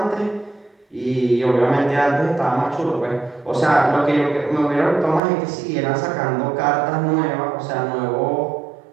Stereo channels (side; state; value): left; drops out; at 5.2 s